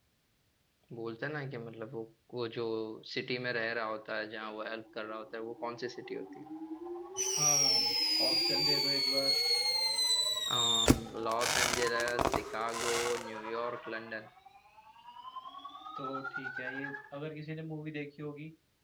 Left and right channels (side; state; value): both; identical; correlation 1.00